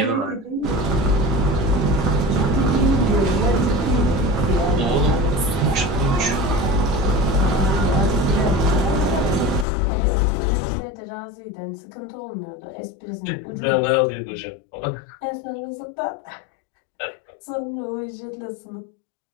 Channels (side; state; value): right; drops out; at 9.7 s